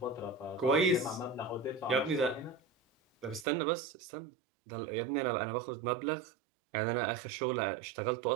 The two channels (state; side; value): drops out; left; at 3.5 s